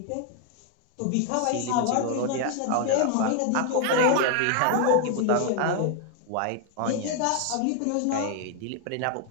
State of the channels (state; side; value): different; both; correlation 0.00